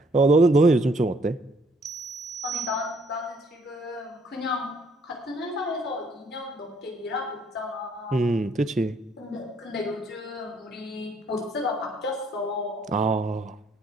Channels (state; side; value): normal; both; correlation 0.65